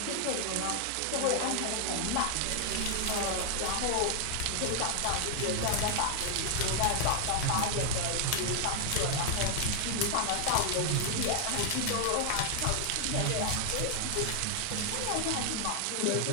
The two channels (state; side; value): different; both; correlation 0.00